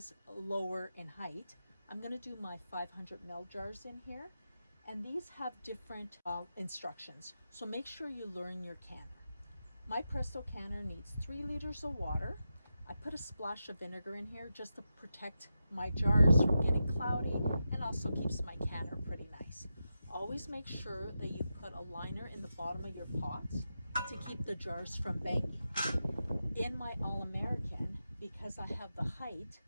lower in height, I'm going to do my 500 ml jars in here. And these have different instructions. So make sure you learn your canner. My Presto canner needs 3 liters of water. I put a splash of vinegar in here just to protect my jars from getting cloudy and also keeps my canner pretty nice. Always make sure that you put a liner in the bottom of your pots to keep the jars from banging. In my All-American, because I have the height,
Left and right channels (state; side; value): inverted; both; correlation -0.89